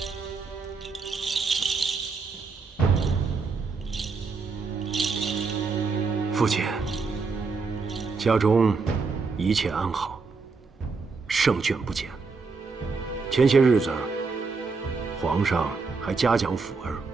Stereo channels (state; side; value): quieter; left; 4.6 dB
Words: 父亲，家中一切安好，胜券不减。前些日子，皇上还嘉奖辅儿